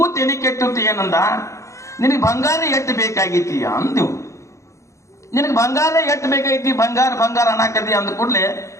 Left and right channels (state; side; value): late; right; 0.15 ms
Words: ತೆಲಿ ಕೆಟ್ಟಿತ್ತು. ಏನಂದ, ನಿನಗೆ ಬಂಗಾರ ಎಟ್ಟು ಬೇಕಾಗೈತಿ ಅಂದಿವು. ನಿನಗೆ ಬಂಗಾರ ಎಟ್ಟು ಬೇಕಾಗೈತಿ, ಬಂಗಾರ ಅನ್ನಕತಿ ಅಂದ ಕೂಡ್ಲೆ,